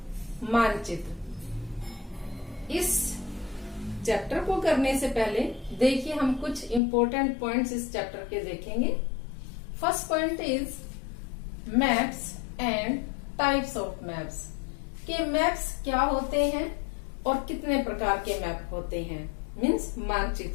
मानचित्र। इस चैप्टर को करने से पहले देखिए हम कुछ इंपॉर्टेंट पॉइंट्स इस चैप्टर के देखेंगे। First point is maps and types of maps, के मैप्स क्या होते हैं और कितने प्रकार के मैप होते हैं, मीन्स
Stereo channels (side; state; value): right; drops out; at 6.8 s